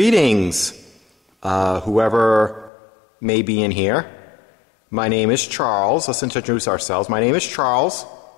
whoever may be in here. My name is Charles. Let's introduce ourselves. My name is Charles.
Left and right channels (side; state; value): right; drops out; at 2.7 s